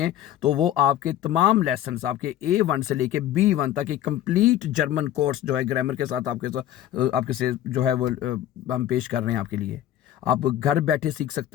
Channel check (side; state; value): right; quieter; 12.0 dB